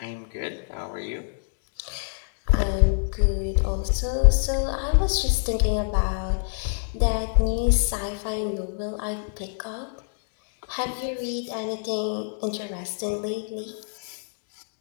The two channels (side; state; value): right; silent; digital silence